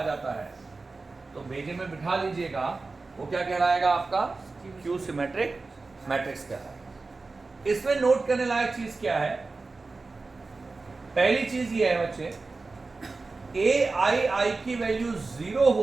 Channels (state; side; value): quieter; left; 3.8 dB